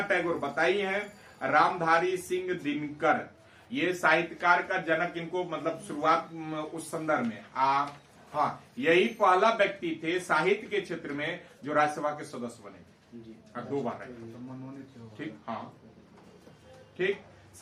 टैगोर बताइए हैं रामधारी सिंह दिनकर, ये साहित्यकार का जनक, इनको मतलब शुरुआत उस संदर्भ में हाँ, यही पहला व्यक्ति थे साहित्य के क्षेत्र में जो राज्यसभा के सदस्य बने जी। 2 बार रहे। ठीक, हाँ ठीक,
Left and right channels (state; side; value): identical; both; correlation 1.00